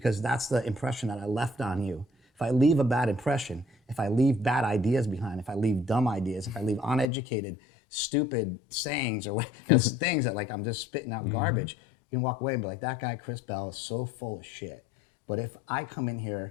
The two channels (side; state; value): right; drops out; at 7.1 s